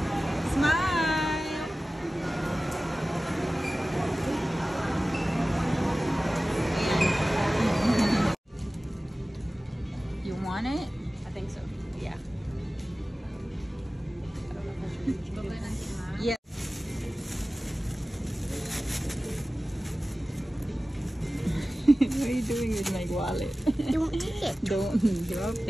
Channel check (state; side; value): normal; both; correlation 0.96